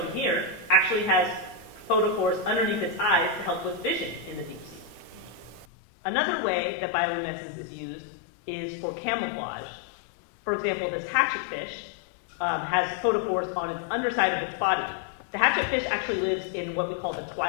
here actually has photophores underneath its eyes to help with vision in the deep sea. Another way that bioluminescence is used is for camouflage. For example, this hatchetfish has photophores on its underside of its body. The hatchetfish actually lives in what we call the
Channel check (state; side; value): drops out; right; at 5.7 s